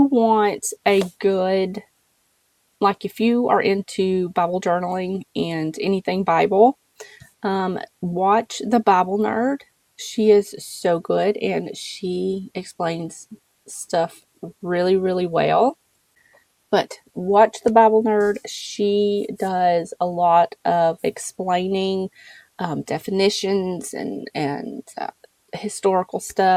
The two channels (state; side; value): identical; both; correlation 1.00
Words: want a good, like if you are into Bible journaling and anything Bible, watch The Bible Nerd. She is so good and she explains stuff really, really well. But watch The Bible Nerd. She does a lot of explaining definitions and historical